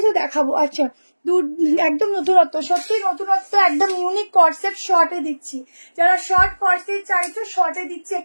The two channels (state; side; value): inverted; both; correlation -1.00